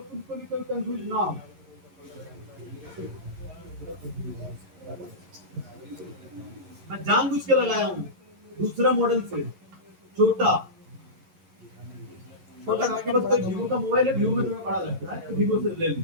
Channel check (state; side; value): late; left; 11 ms